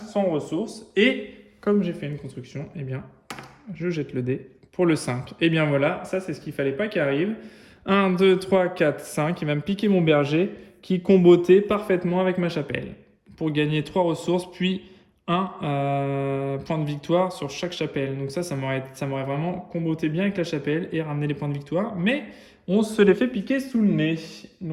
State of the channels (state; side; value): identical; both; correlation 1.00